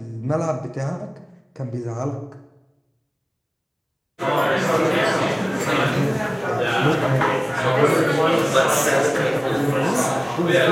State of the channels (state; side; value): identical; both; correlation 1.00